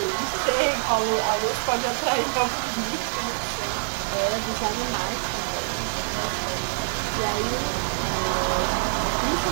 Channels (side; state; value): left; silent; digital silence